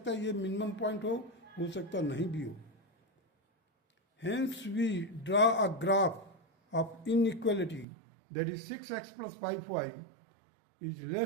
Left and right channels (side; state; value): left; drops out; at 7.9 s